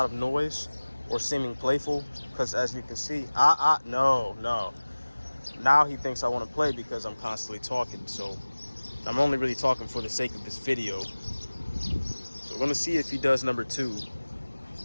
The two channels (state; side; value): inverted; both; correlation -1.00